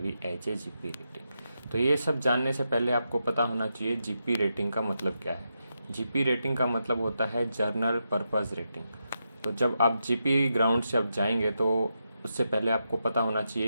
as a GP rating. तो ये सब जानने से पहले आपको पता होना चाहिए जीपी रेटिंग का मतलब क्या है। जीपी रेटिंग का मतलब होता है जर्नल पर्पस रेटिंग। तो जब आप जीपी ग्राउंड से आप जाएंगे तो उससे पहले आपको पता होना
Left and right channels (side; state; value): both; inverted; correlation -0.85